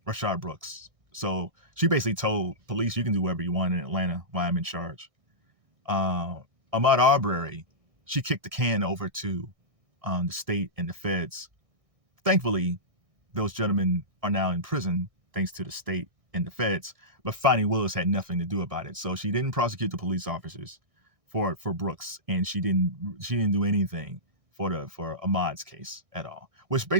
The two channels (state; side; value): late; left; 1.6 ms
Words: Brooks. So she basically told police, you can do whatever you want in Atlanta while I'm in charge. Ahmaud Arbery, she kicked the can over to the state and the feds. Thankfully, those gentlemen are now in prison thanks to the state and the feds. But Fani Willis had nothing to do about it, so she didn't prosecute the police officers for Brooks, and she didn't do anything for Ahmaud's case at all. Which